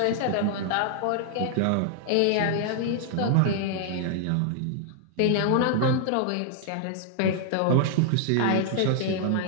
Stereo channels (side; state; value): both; different; correlation 0.00